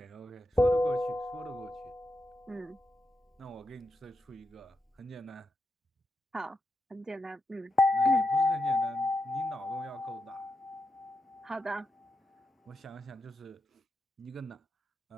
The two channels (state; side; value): normal; both; correlation 0.86